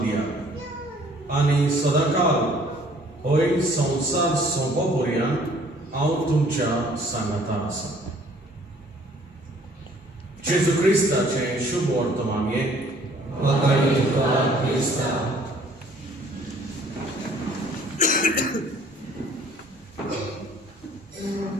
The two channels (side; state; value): both; normal; correlation 0.57